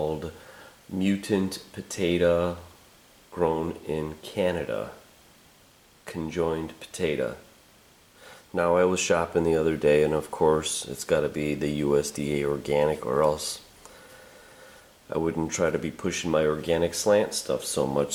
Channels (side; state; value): both; identical; correlation 1.00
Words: Mutant Potato Grown in Canada. Conjoined potato. Now, I was shopping the other day, and of course it's got to be the USDA organic, or else I wouldn't try to be pushing my organic slant stuff so much.